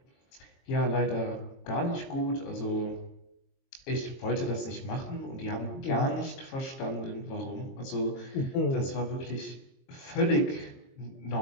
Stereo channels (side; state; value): right; late; 22 ms